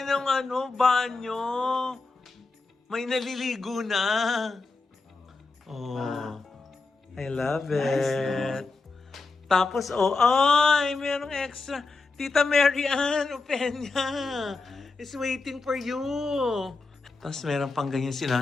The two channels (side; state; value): right; quieter; 3.8 dB